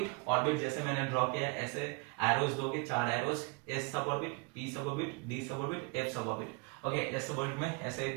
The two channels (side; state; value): left; quieter; 29.3 dB